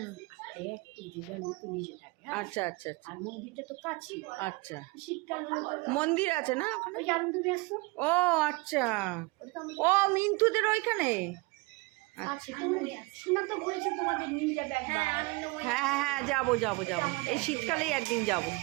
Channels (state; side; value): quieter; left; 25.5 dB